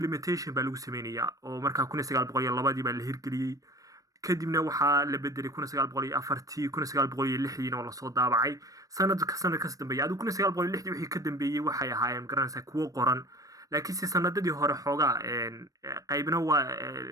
baa lagu sameynaya oo markaa 1902 baa la hirgeliyey, kadibna waxaa la bedelay 1904 1906 oo la soo daabacay sanadkaas dambeeyay. Adigu 1906 wixii ka dambeeyay waxay ahaayeen garanaysaa kuwo qoran, laakiinse sanadadii hore xoogaa qaybna waa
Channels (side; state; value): left; late; 0.16 ms